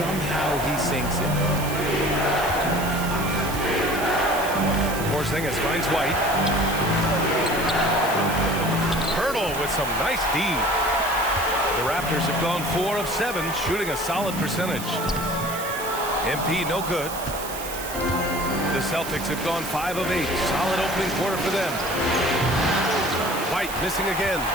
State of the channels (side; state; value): right; noise; hiss, 10 dB below the sound